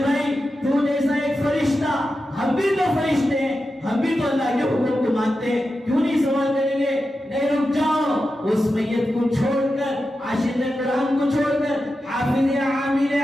بھائی تو جیسا ایک فرشتہ، ہم بھی تو فرشتے ہیں، ہم بھی تو اللہ کے حکم کو مانتے ہیں، کیوں نہیں سوال کریں گے؟ نہیں، رک جاؤ، اس میت کو چھوڑ کر، عاشق قرآن کو چھوڑ کر، حافظ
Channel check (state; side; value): normal; both; correlation 0.91